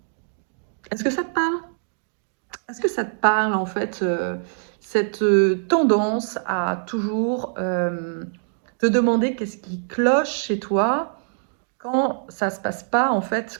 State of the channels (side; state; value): left; silent; digital silence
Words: Est-ce que ça te parle? Est-ce que ça te parle en fait cette tendance à toujours te demander qu'est-ce qui cloche chez toi quand ça se passe pas en fait